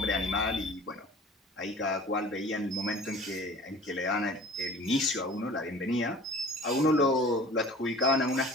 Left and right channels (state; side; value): normal; both; correlation 0.44